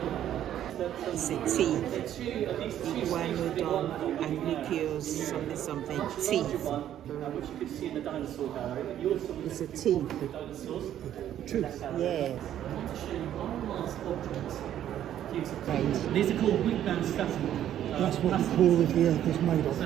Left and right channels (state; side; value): quieter; left; 11.1 dB